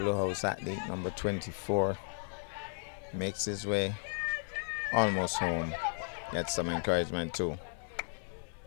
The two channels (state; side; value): silent; right; digital silence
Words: Blue House athlete number 24 makes his way almost home. Gets some encouragement too.